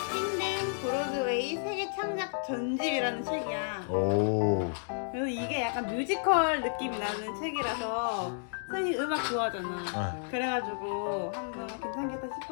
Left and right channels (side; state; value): right; silent; digital silence